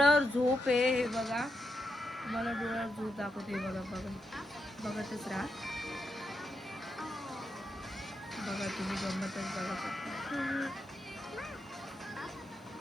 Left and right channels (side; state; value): both; normal; correlation 0.84